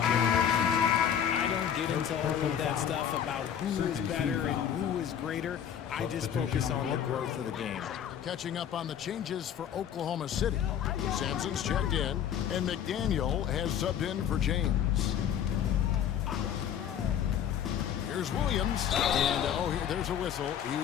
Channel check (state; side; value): quieter; right; 9.2 dB